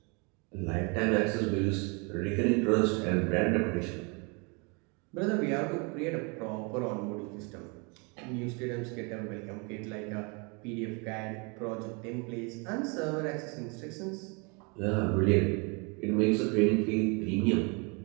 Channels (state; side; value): quieter; left; 31.9 dB